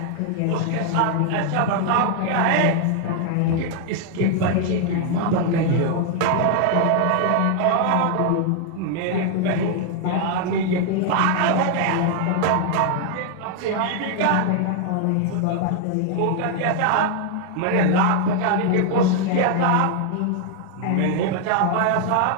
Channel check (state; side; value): different; both; correlation 0.00